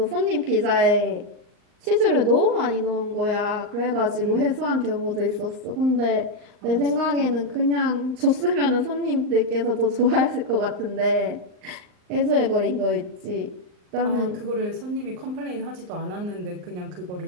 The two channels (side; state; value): left; late; 39 ms